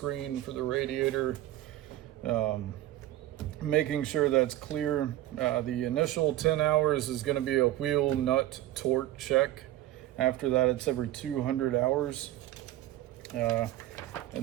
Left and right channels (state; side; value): quieter; left; 14.3 dB